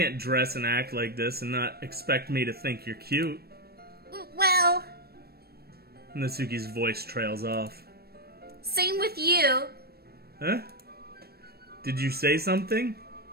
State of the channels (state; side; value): late; left; 0.46 ms